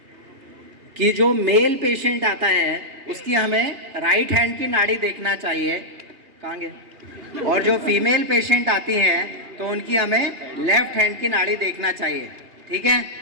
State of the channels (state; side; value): late; left; 2.8 ms